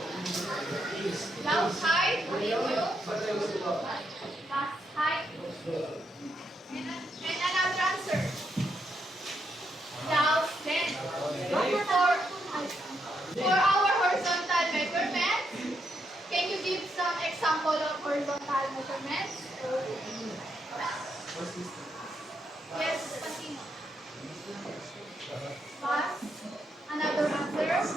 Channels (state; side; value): normal; both; correlation 0.79